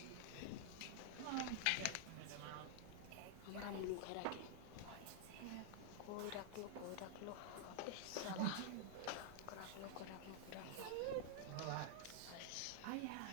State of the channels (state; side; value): different; both; correlation -0.01